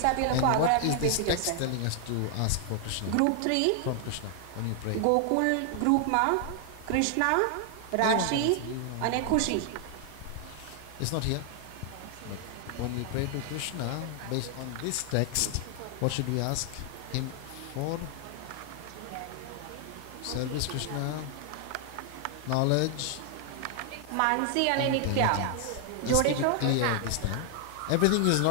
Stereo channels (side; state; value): both; different; correlation 0.00